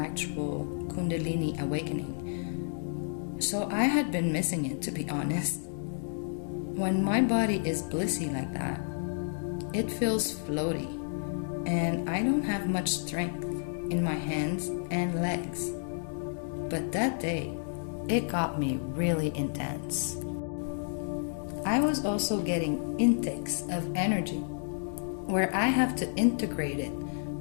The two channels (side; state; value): right; silent; digital silence